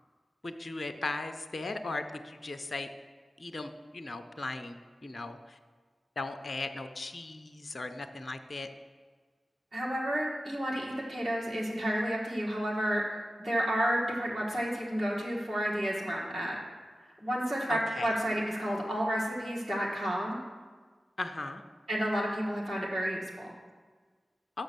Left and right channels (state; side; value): normal; both; correlation 0.93